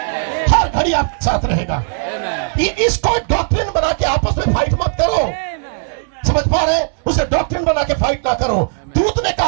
हर घड़ी आपके साथ रहेगा। इसको डॉक्ट्रिन बना के आपस में फाइट मत करो, समझ पा रहे? उसे डॉक्ट्रिन बना के फाइट ना करो। दूत ने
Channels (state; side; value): silent; left; 68 dB below the other